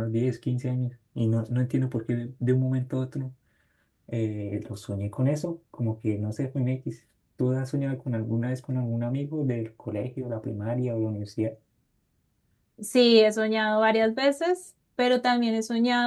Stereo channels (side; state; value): both; identical; correlation 1.00